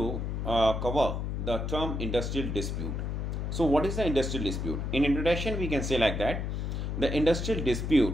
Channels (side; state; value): left; noise; hum, 2 dB below the sound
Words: cover the term industrial dispute. So what is the industrial dispute? In introduction we can say like that the industrial